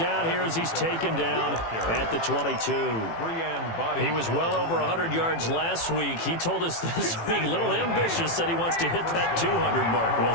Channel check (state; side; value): late; right; 18 ms